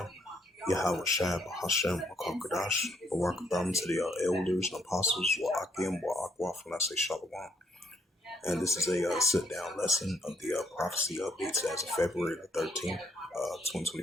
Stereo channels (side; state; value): both; normal; correlation 0.71